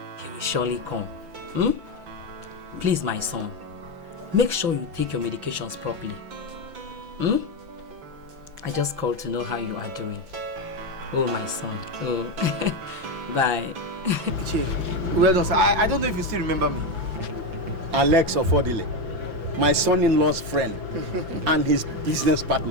He will surely come. Please, my son, make sure you take your medications properly. I just called to know how you are doing. Oh, my son. Oh, bye. Well done, sir. I don't know if you still remember me. Alex Ofodile, my son-in-law's friend and his business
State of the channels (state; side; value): late; left; 5.9 ms